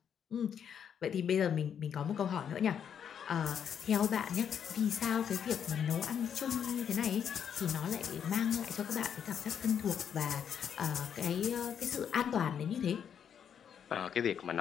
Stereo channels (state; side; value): quieter; right; 8.2 dB